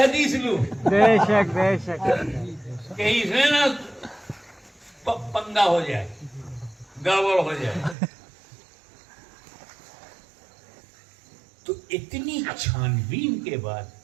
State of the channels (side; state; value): left; drops out; at 8.0 s